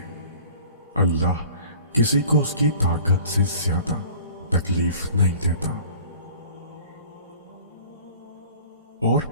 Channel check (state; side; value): inverted; both; correlation -0.46